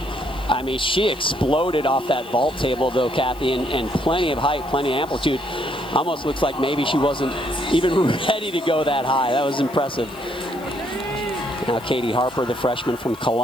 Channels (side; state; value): left; noise; hiss, 22 dB below the sound